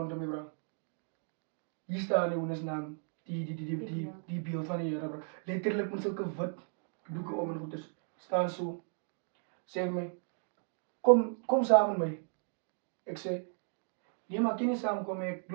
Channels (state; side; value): silent; left; 54 dB below the other